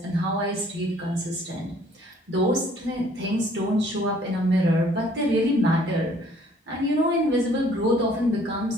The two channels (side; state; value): both; normal; correlation 0.58